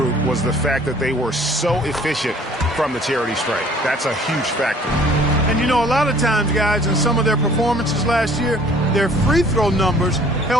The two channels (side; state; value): both; normal; correlation 0.54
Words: was the fact that they were so efficient from the charity stripe. That's a huge factor. And you know, a lot of times, guys, in some of their performances last year, their free throw numbers